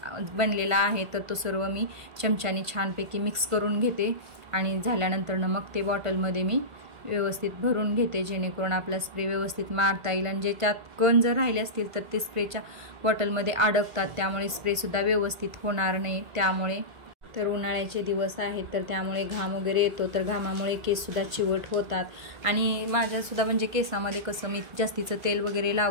बनलेला आहे तर तो सर्व मी चमच्याने छानपैकी मिक्स करून घेते, आणि झाल्यानंतर ना मग ते बॉटलमध्ये मी व्यवस्थित भरून घेते, जेणेकरून आपला स्प्रे व्यवस्थित मारता येईल। आणि ज्याच्यात कण जर राहिले असतील तर ते स्प्रेच्या बॉटलमध्ये अडकतात, त्यामुळे स्प्रेसुद्धा व्यवस्थित होणार नाही। त्यामुळे तर उन्हाळ्याचे दिवस आहेत तर त्यामुळे घाम वगैरे येतो, तर घामामुळे केससुद्धा चिवट होतात। आणि माझ्यासुद्धा म्हणजे केसामध्ये कसं मी जास्तीचं तेल वगैरे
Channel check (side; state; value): left; late; 1.5 ms